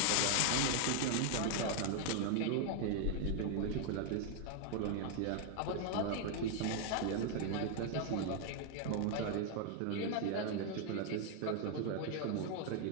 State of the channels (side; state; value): both; different; correlation 0.00